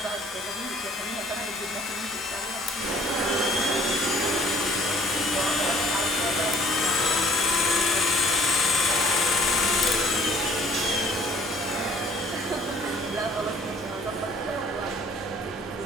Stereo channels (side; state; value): both; normal; correlation 0.55